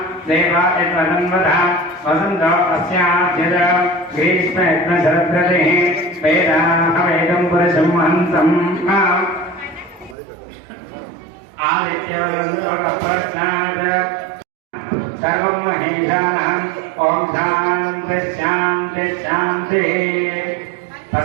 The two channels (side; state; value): left; drops out; at 10.2 s